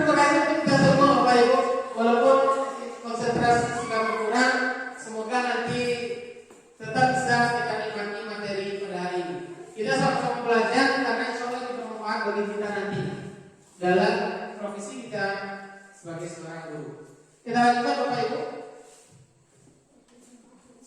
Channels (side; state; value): both; identical; correlation 1.00